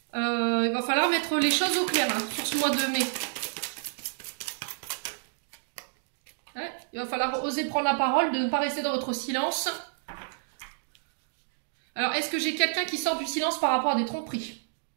Il va falloir mettre les choses au clair hein, sur ce mois de mai. Ouais, il va falloir oser prendre la parole, de ne pas rester dans votre silence. Alors, est-ce que j'ai quelqu'un qui sort du silence par rapport à des tromperies?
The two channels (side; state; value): left; silent; digital silence